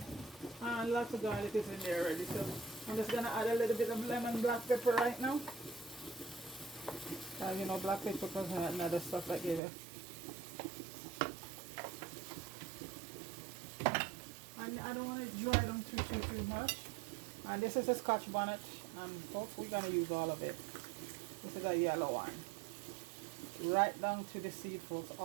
And lots of garlic is in there already, so I'm just gonna add a little bit of lemon black pepper right now. You know, black pepper and other stuff that give it. And I don't want to dry them too much. And this is a Scotch bonnet, and folks, we're gonna use all of it. This is a yellow one. Right down to the seed, folks,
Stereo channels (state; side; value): drops out; left; at 9.6 s